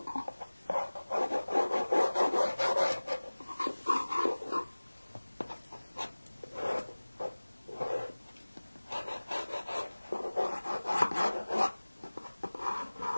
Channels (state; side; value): inverted; both; correlation -1.00